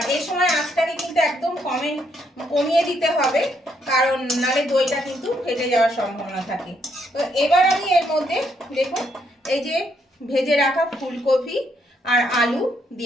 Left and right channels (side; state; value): both; normal; correlation 0.74